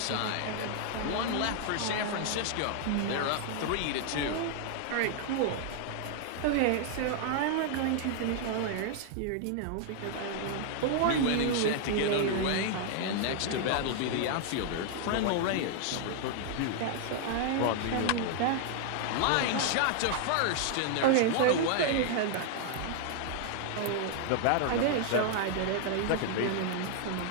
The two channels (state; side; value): different; both; correlation 0.00